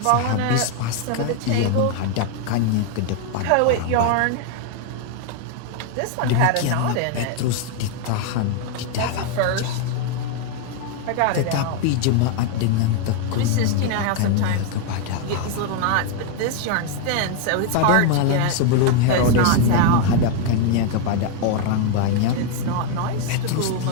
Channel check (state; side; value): different; both; correlation 0.00